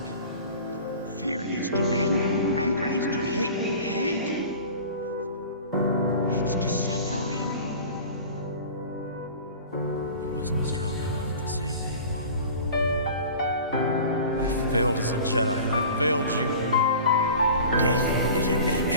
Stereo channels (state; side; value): inverted; both; correlation -0.40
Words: Fear leads to anger. Anger leads to hate. Hate leads to suffering. I wasn't strong enough to save you, Mom. I failed as a Jedi, and I failed you. Death is a